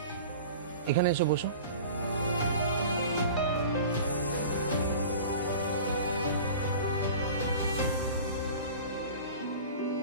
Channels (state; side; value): inverted; both; correlation -0.39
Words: এখানে এসে বসো।